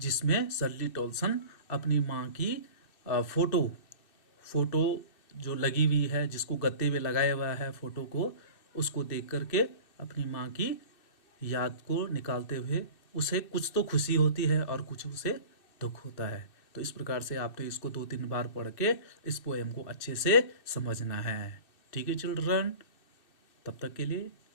सर्ली टॉल्सन अपनी माँ की फोटो फोटो जो लगी हुई है, जिसको गत्ते में लगाया हुआ है फोटो को, उसको देख करके अपनी माँ की याद को निकालते हुए उसे कुछ तो खुशी होती है और कुछ उसे दुख होता है। तो इस प्रकार से आपने इसको 2-3 बार पढ़ के इस पोएम को अच्छे से समझना है। ठीक है चिल्ड्रन, तब तक के लिए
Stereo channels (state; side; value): late; right; 2.6 ms